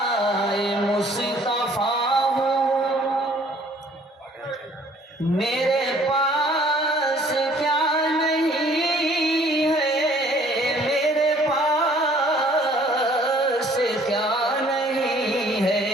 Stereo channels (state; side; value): normal; both; correlation 0.58